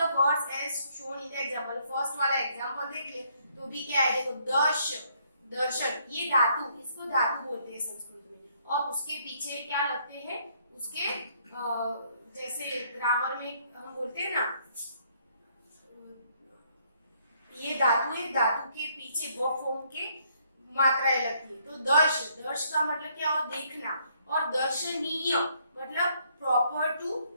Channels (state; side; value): inverted; both; correlation -0.68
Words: words as shown in the example, first वाला एग्जांपल देखिए तो भी क्या है, देखो दर्श, दर्शन, ये धातु, इसको धातु बोलते हैं संस्कृत में। और उसके पीछे क्या लगते हैं, उसके जैसे ग्रामर में हम बोलते हैं ना, ये धातु है, धातु के पीछे वो फॉर्म के मात्राएं लगती है। तो दर्श, दर्श का मतलब क्या हो, देखना। और दर्शनीय मतलब प्रॉपर